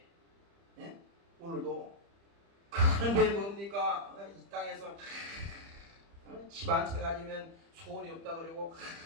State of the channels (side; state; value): left; late; 30 ms